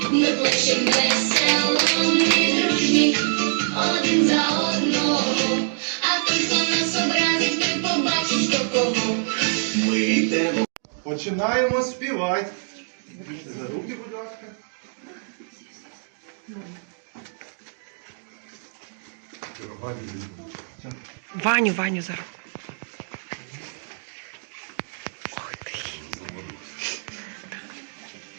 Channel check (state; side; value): silent; left; digital silence